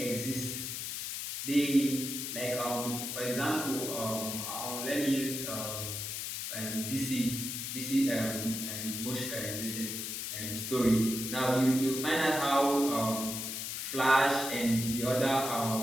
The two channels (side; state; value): left; noise; hiss, 4 dB below the sound